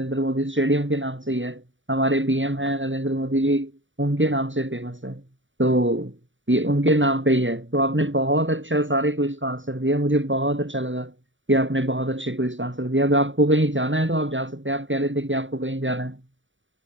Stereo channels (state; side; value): late; left; 0.56 ms